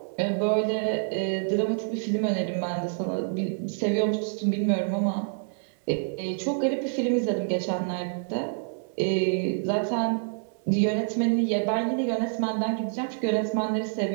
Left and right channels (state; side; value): silent; left; 60 dB below the other